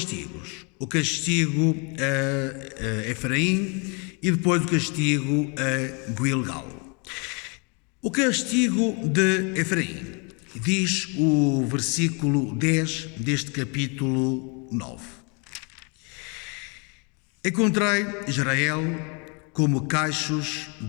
O castigo a Efraim e depois o castigo a Gilgal. O castigo de Efraim, diz o versículo 10 deste capítulo 9. Encontrei Israel como cachos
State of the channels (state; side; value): quieter; right; 34.0 dB